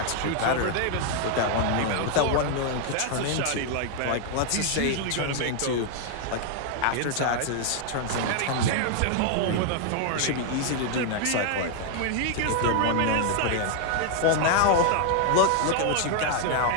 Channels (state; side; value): different; both; correlation 0.00